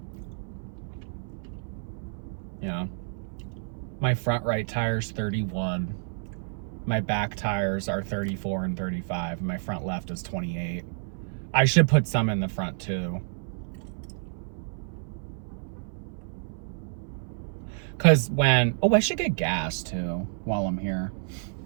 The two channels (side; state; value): left; silent; 59 dB below the other